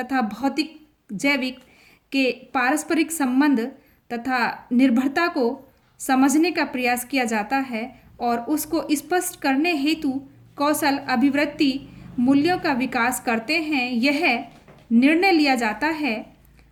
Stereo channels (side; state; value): both; identical; correlation 1.00